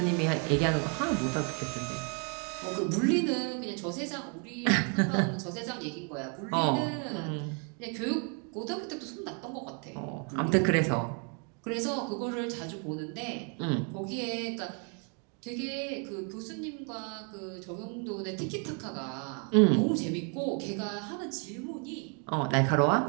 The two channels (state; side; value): quieter; left; 38.3 dB